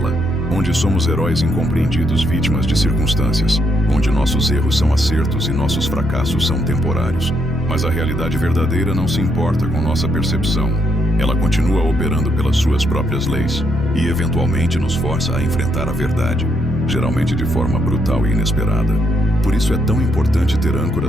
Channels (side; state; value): both; normal; correlation 0.76